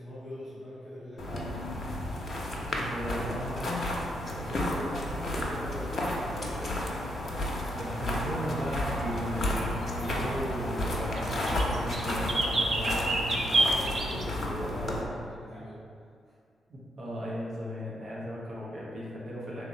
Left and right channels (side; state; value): both; normal; correlation 0.76